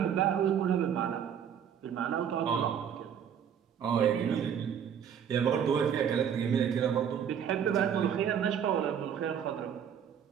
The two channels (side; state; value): left; quieter; 8.4 dB